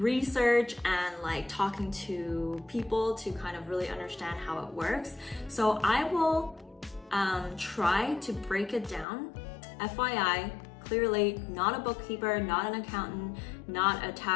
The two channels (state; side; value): drops out; right; at 9.1 s